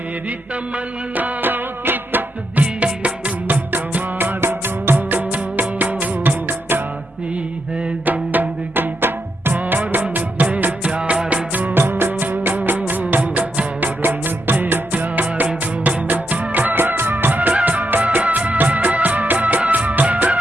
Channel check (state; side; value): normal; both; correlation 0.82